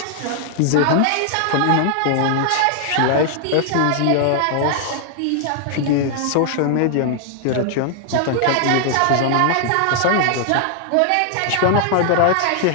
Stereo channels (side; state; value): both; different; correlation 0.00